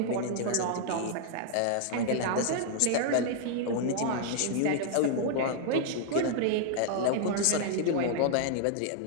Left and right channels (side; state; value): both; different; correlation -0.01